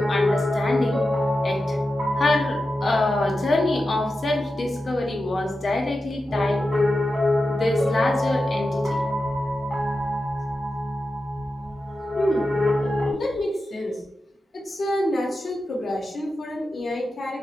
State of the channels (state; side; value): normal; both; correlation 0.91